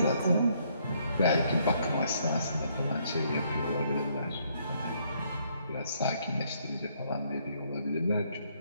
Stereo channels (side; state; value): both; inverted; correlation -0.69